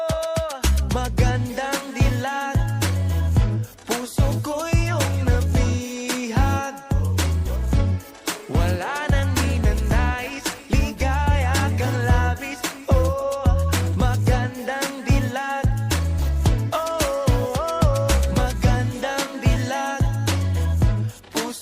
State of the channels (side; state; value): both; identical; correlation 1.00